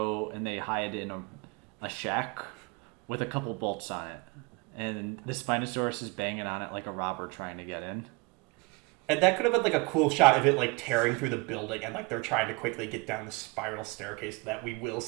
and they hide in a shack with a couple bolts on it. And the Spinosaurus is banging on it like a robber trying to get in. And that could have been like a cool shot of it like tearing through the building and like they're trying to quickly get down the spiral staircase that we will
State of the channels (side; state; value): left; quieter; 27.3 dB